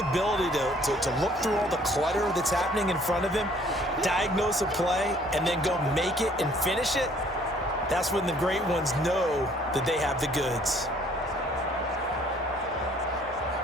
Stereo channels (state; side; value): normal; both; correlation 0.59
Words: to look through all the clutter that's happening in front of him, diagnose a play, and then go make it and finish it, that's when the great ones know that they have the goods.